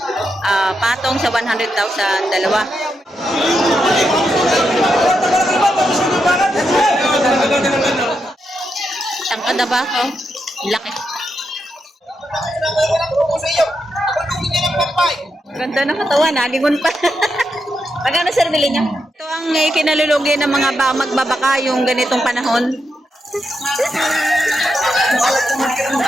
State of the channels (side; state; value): both; normal; correlation 0.84